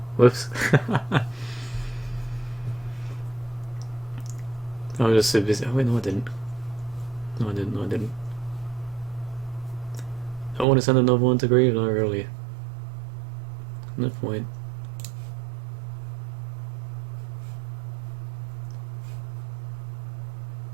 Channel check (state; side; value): drops out; left; at 10.7 s